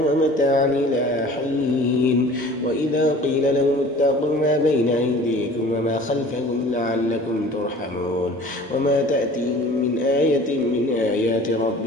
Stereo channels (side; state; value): both; normal; correlation 0.45